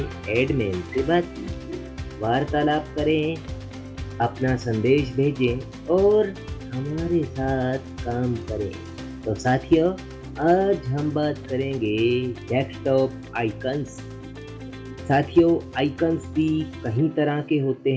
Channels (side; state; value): both; identical; correlation 1.00